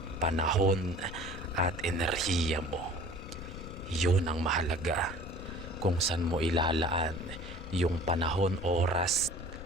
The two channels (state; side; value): noise; left; rumble, 12 dB below the sound